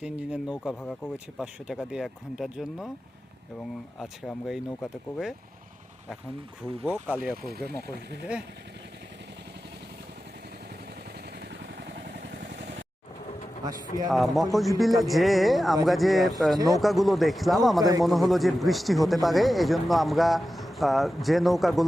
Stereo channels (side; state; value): both; normal; correlation 0.93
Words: ইঞ্জিনের নৌকা ভাড়া করেছি 500 টাকা দিয়ে 1 ঘন্টার জন্য, এবং আজকে আমরা এই নৌকাতে করে এখন ঘুরবো কালিয়াকৈরে মকসবিলে। মকসবিলে যে আমরা যে নৌকাগুলো দেখলাম আমাদের মনে হলো যে বৃষ্টি হতে পারে, এজন্য আমরা যে